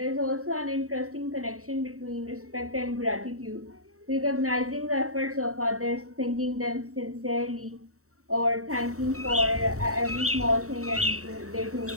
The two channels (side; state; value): left; late; 0.64 ms